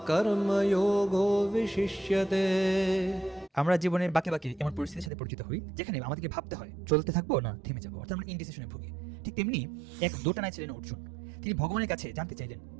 কর্মযোগো বিশিষ্যতে। আমরা জীবনের বাঁকে বাঁকে এমন পরিস্থিতির সাথে পরিচিত হই যেখানে আমাদেরকে ভাবতে হয় চলতে থাকবো না থেমে যাবো, অর্থাৎ আমরা ইনডিসিশনে ভুগি। ঠিক তেমনি এক দোটানায় ছিলেন অর্জুন। তিনি ভগবানের কাছে জানতে চাইলেন,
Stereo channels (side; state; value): left; drops out; at 5.1 s